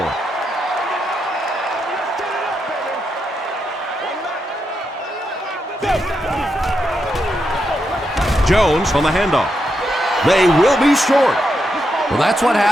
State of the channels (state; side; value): normal; both; correlation 0.83